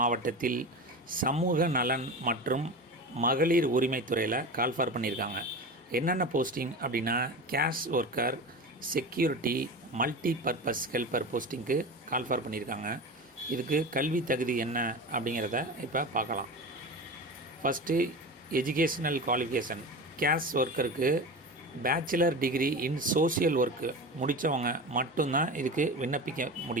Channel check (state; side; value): normal; both; correlation 0.28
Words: சமூக நலன் மற்றும் மகளிர் உரிமைத்துறையில் கால்ஃபார் பண்ணியிருக்காங்க. என்னென்ன போஸ்டிங் அப்படின்னா, case worker, security, multi purpose helper போஸ்டிங்க்கு கால்ஃபார் பண்ணியிருக்காங்க. இதுக்கு கல்வி தகுதி என்ன அப்படிங்கிறத இப்போ பார்க்கலாம். First educational qualification. கேஷ் ஒர்க்கருக்கு bachelor degree in social work முடித்தவங்க மட்டும்தான் இதுக்கு விண்ணப்பிக்க